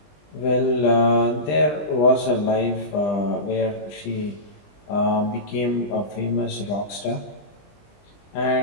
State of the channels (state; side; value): late; right; 20 ms